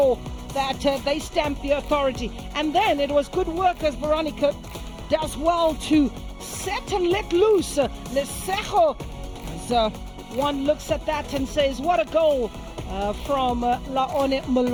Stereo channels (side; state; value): both; identical; correlation 1.00